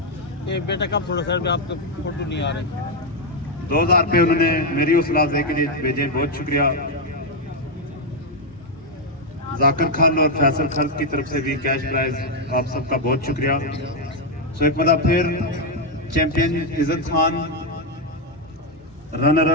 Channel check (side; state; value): both; normal; correlation 0.02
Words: बेटा कब थोड़ा सर आपके फोटो नहीं आ रहे। 2000 रुपये उन्होंने मेरी हौसला अफजाई के लिए भेजे, बहुत शुक्रिया। जाकिर खान और फैसल खर्च की तरफ से भी कैश प्राइज, आप सबका बहुत शुक्रिया। सो एक मतलब फिर champion Izzat Khan, runner